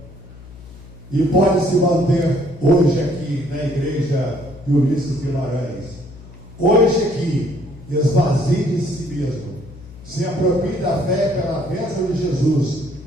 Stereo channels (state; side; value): noise; left; hum, 18 dB below the sound